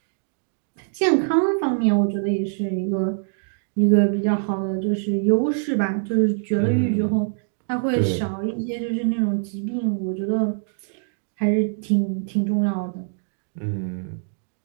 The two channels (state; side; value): silent; left; digital silence